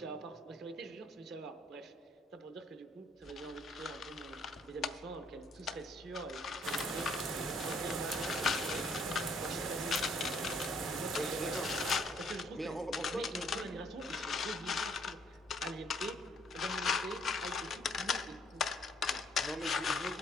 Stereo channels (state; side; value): normal; both; correlation 0.65